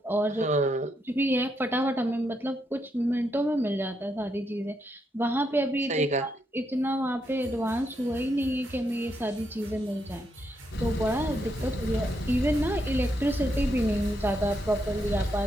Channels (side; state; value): both; normal; correlation 0.79